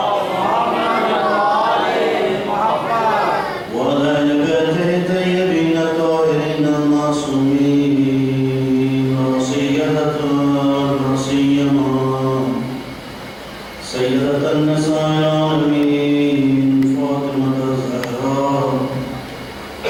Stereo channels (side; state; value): both; identical; correlation 1.00